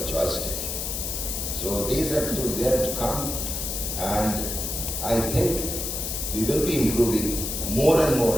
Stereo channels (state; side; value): noise; left; hiss, 3 dB below the sound